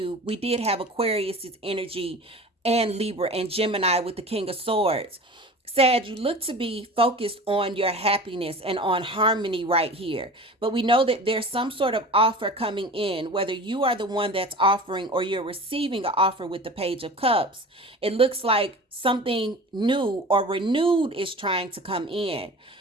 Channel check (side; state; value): both; normal; correlation 0.37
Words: we did have Aquarius's energy and Libra and Gemini with the King of Swords. Sag, you look to be focused on your happiness and on harmony right here. But we know that there's some sort of offer coming in, whether you are the one that's offering or you're receiving an offer with the Page of Cups. It looks like something new or renewed is trying to come in.